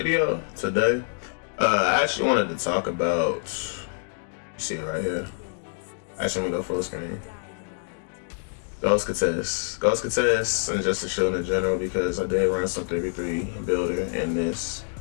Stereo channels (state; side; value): silent; right; digital silence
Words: today, I actually wanted to talk about, you see it right here. Actually, I'm gonna go full screen. Ghost contests, and just to show in general, because I did run some 3v3 builder in this